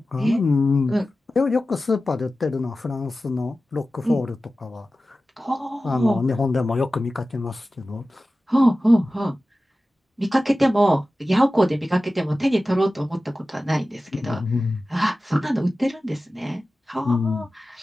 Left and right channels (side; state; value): both; normal; correlation 0.95